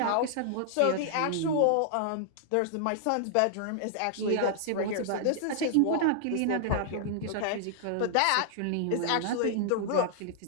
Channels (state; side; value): different; both; correlation -0.01